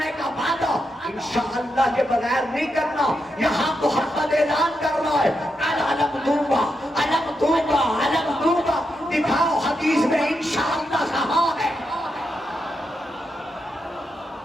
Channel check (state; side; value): normal; both; correlation 0.84